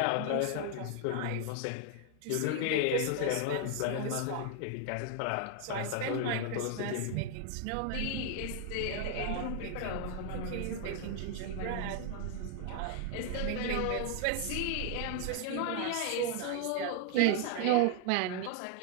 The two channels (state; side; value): different; both; correlation 0.00